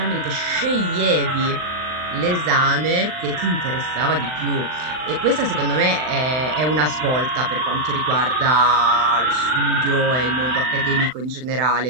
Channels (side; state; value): left; late; 39 ms